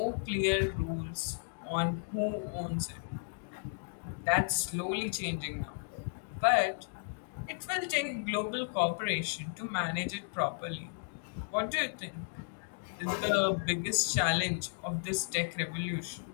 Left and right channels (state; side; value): silent; right; digital silence